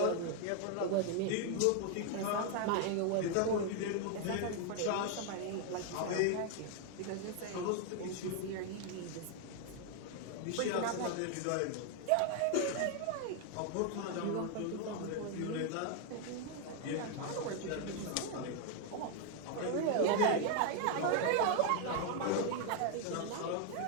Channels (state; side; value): different; both; correlation 0.00